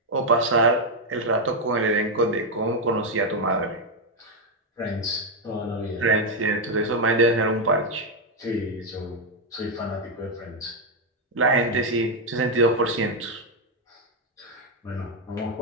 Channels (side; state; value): both; normal; correlation 0.02